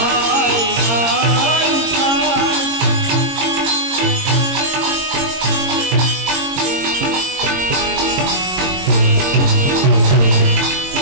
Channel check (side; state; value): left; late; 22 ms